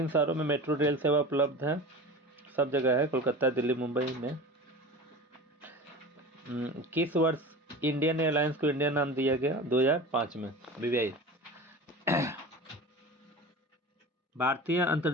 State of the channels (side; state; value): both; normal; correlation 0.33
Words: शहरों में मेट्रो रेल सेवा उपलब्ध है? सब जगह है, कोलकाता, दिल्ली, मुंबई में। किस वर्ष इंडियन एयरलाइंस को इंडिया नाम दिया गया? 2005 में। विवेक। भारतीय